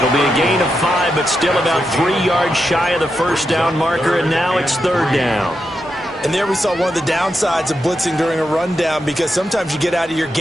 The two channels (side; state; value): both; normal; correlation 0.86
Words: be a gain of 5, but still about 3 yards shy of the first down marker, and now it's 3rd down. And there we saw one of the downsides of blitzing during a rundown, because sometimes you get out of your